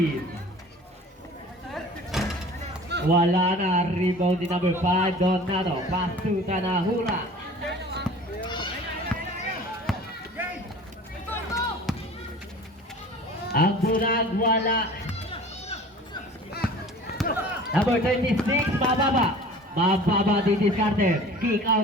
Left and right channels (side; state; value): both; normal; correlation 0.43